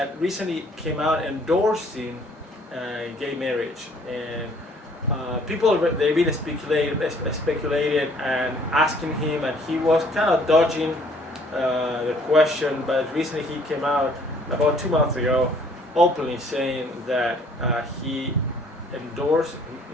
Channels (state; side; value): normal; both; correlation 0.59